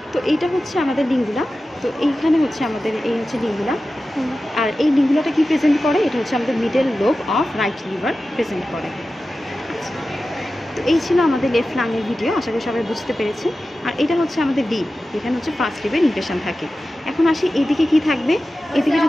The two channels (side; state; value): both; normal; correlation 0.94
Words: তো এইটা হচ্ছে আমাদের লিঙ্গুলা। তো এইখানে হচ্ছে আমাদের এই হচ্ছে লিঙ্গুলা। আর এই লিঙ্গুলাটা কি প্রেজেন্ট করে? এটা হচ্ছে আমাদের middle lobe of right liver present করে। তো এই ছিল আমাদের লেফট লাংয়ের ভিডিও, আশা করি সবাই বুঝতে পেরেছি। আর এটা হচ্ছে আমাদের লিব, এখানে হচ্ছে ফার্স্ট লিভের ইমপ্রেশন থাকে। এখন আসি এদিকে কি থাকবে। এদিকে